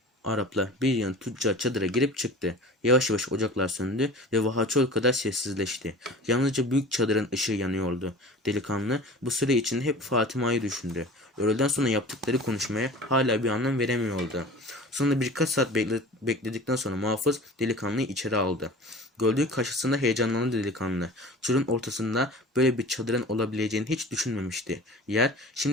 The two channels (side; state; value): both; normal; correlation 0.40